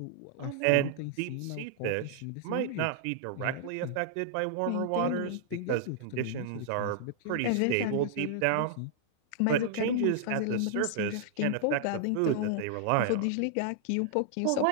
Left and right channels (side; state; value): both; different; correlation -0.01